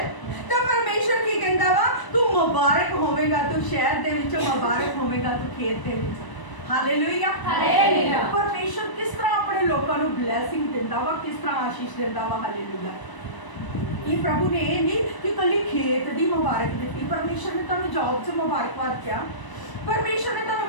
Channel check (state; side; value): late; right; 1.0 ms